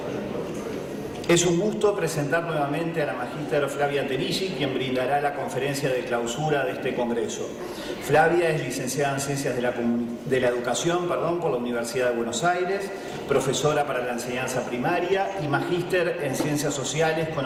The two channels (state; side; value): identical; both; correlation 1.00